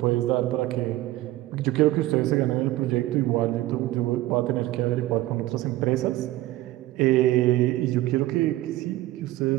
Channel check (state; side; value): quieter; left; 16.6 dB